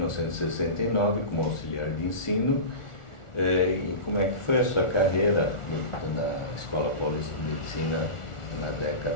como auxiliar de ensino. E como é que foi a sua carreira na Escola Paulista de Medicina na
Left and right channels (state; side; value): late; right; 1.4 ms